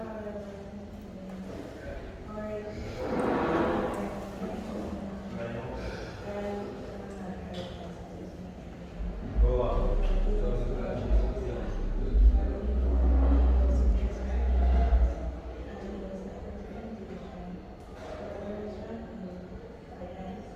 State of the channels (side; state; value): both; identical; correlation 1.00